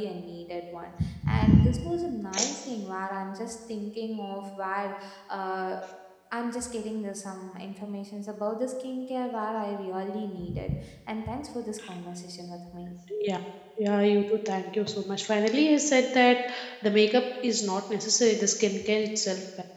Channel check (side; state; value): both; identical; correlation 1.00